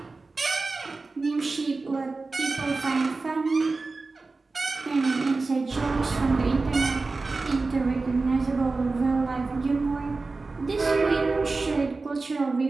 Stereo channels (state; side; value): quieter; left; 3.7 dB